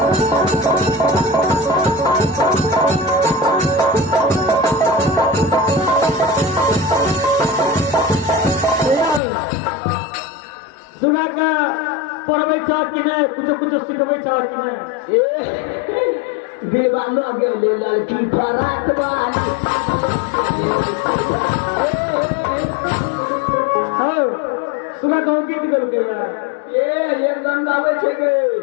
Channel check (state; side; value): drops out; right; at 9.2 s